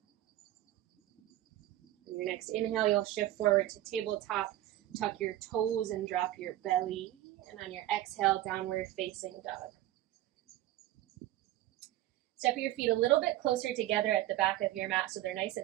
On your next inhale, you'll shift forward to tabletop, tuck your toes and drop your belly. And on your exhale, downward facing dog. Step your feet a little bit closer together at the back of your mat so they're nice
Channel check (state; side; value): quieter; left; 14.5 dB